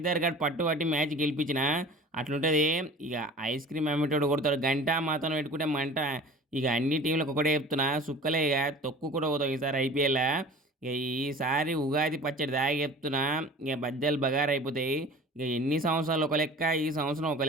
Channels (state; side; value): normal; both; correlation 0.41